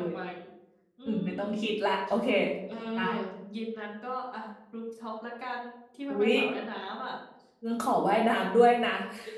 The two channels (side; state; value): both; identical; correlation 1.00